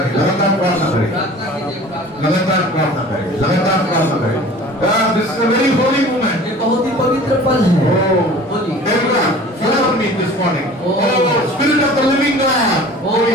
लगातार प्रार्थना करें, लगातार प्रार्थना करें, लगातार प्रार्थना करें। This is a very holy moment. ये बहुत ही पवित्र पल है। Oh, बोलिए। everyone, follow me this morning. Oh, Spirit of the living God. ओ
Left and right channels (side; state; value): both; normal; correlation 0.44